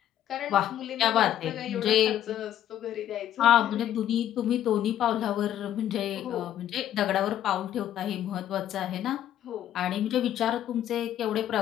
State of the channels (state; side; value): quieter; right; 11.4 dB